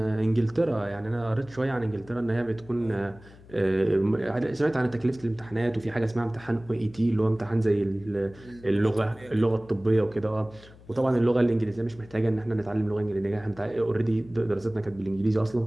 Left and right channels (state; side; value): noise; left; hum, 22 dB below the sound